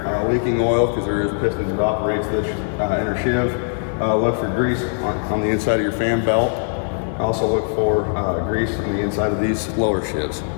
leaking oil because there is pistons that operates this inner sheave. Look for grease on the inside of your fan belt. Also look for grease on the inside of these lower sheaves.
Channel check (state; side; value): silent; right; 60 dB below the other